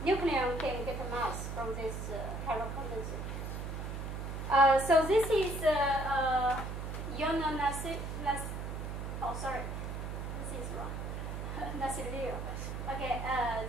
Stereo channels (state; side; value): noise; right; hum, 5 dB below the sound